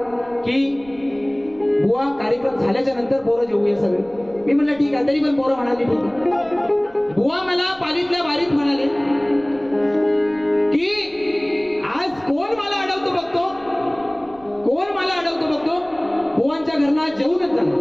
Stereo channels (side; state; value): right; noise; rumble, 26 dB below the sound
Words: की बुवा कार्यक्रम झाल्याच्या नंतर पोरं जेवूया सगळे. मी म्हणलं ठीक आहे. तरी पण पोरं म्हणाली ठीक आहे. बुवा मला पालीतल्या बारीत म्हणाले की आज कोण मला अडवतो बघतो, कोण मला अडवतो बघतो, बुवांच्या घरना जेवूनच जाणार.